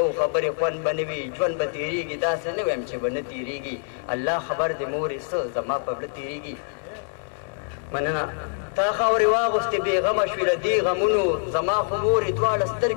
خبرې خوند به نه وي ژوند به تېرېږي داسې نه وایم چې به نه تېرېږي الله خبر دې مورې څه زما په زړه تېرېږي مننه تا خاورې واغوستې بېغمه شوې له دې غمونو زما خو مورې دواړه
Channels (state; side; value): silent; right; 62 dB below the other